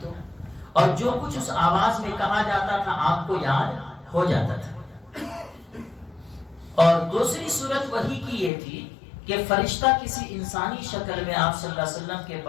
اور جو کچھ اس آواز میں کہا جاتا تھا آپ کو یاد ہو جاتا تھا۔ اور دوسری صورت وحی کی یہ تھی کہ فرشتہ کسی انسانی شکل میں آپ صلی اللہ علیہ وسلم کے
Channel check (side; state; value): right; drops out; at 8.5 s